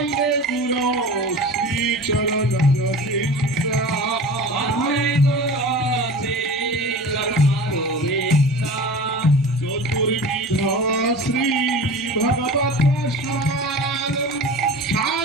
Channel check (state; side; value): normal; both; correlation 0.35